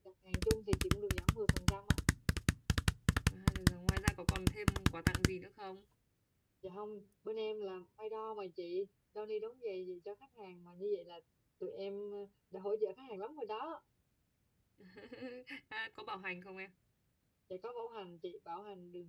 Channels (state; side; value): identical; both; correlation 1.00